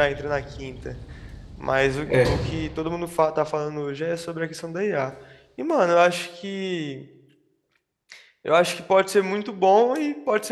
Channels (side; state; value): both; identical; correlation 1.00